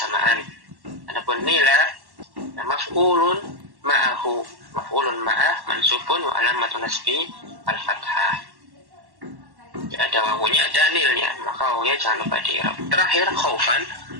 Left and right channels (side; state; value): left; late; 1.1 ms